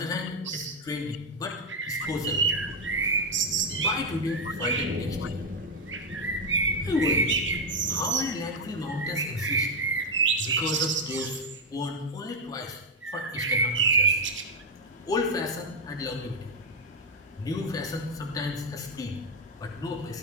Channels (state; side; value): normal; both; correlation 0.02